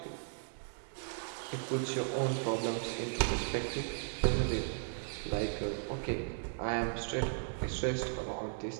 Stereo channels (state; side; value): silent; left; 54 dB below the other